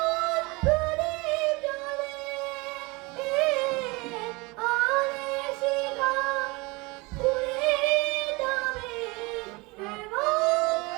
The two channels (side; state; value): left; quieter; 25.6 dB